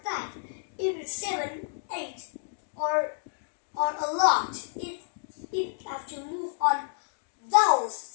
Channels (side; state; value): right; silent; digital silence